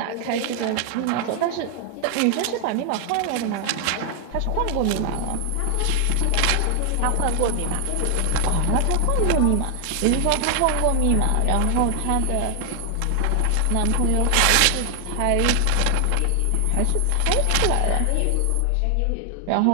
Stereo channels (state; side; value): different; both; correlation 0.00